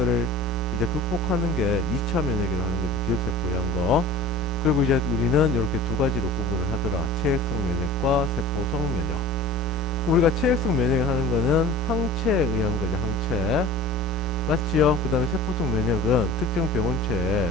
이제 극복하는 게 2차 면역이라고 하는 거죠. 기억세포에 한 거. 그리고 이제 우리는 이렇게 두 가지로 구분을 하더라. 체액성 면역과 세포성 면역. 우리가 체액성 면역을 하는 거는 항체에 의한 거죠. 항체. 맞지요? 그 다음에 세포성 면역은 특정 병원체에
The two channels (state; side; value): normal; both; correlation 0.41